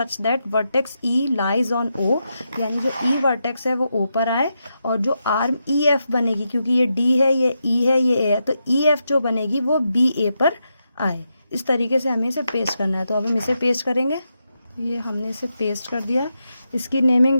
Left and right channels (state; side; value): inverted; both; correlation -0.85